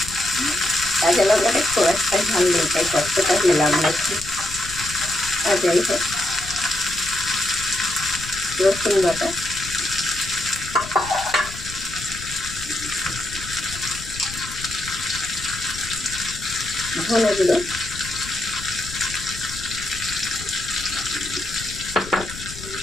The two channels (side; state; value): left; noise; rumble, 13 dB below the sound